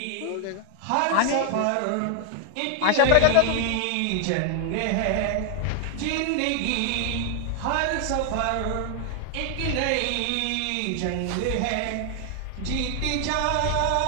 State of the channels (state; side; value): different; both; correlation 0.00